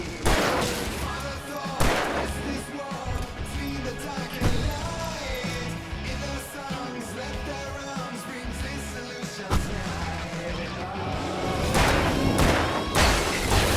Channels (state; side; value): identical; both; correlation 1.00